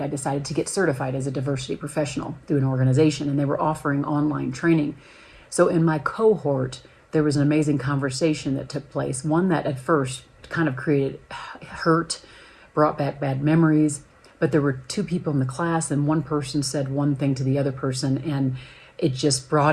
I decided to get certified as a diversity professional through an organization, and they were offering online training. So in my cohort, there was an amazing conversation that took place, one that at first kind of created hurt, brought back bad memories, but there were two people in the class, and one person said one thing to the other person, and it just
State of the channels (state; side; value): identical; both; correlation 1.00